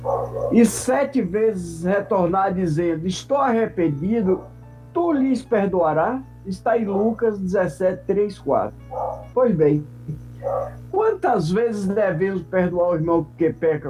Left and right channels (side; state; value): both; identical; correlation 1.00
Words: 7 vezes retornar dizendo, estou arrependido, tu lhes perdoará? Está em Lucas 17, 3, 4. Pois bem, quantas vezes devemos perdoar o irmão que